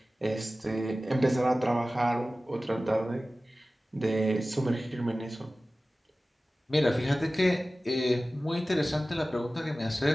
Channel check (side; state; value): both; normal; correlation 0.96